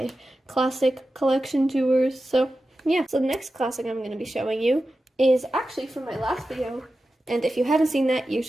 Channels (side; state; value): both; normal; correlation 0.92